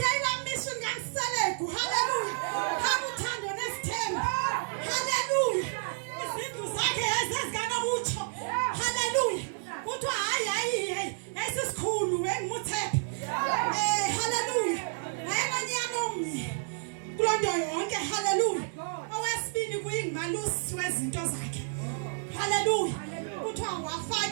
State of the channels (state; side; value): silent; left; 58 dB below the other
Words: ayilaa mission kaMselegu haleluya kakuthando nesithembu haleluya izindlu zakhe yayizezikanokutsho haleluya kuthiwa hayi yayisisikhulu engimuthepha haleluya wayenonyana omnye kuloo nto yonke haleluya owesibini kuyingumalusi wezinto zakhe haleluya kuthiwa